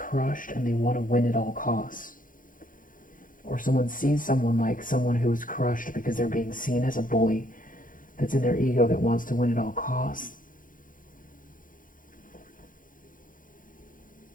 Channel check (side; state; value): right; late; 0.39 ms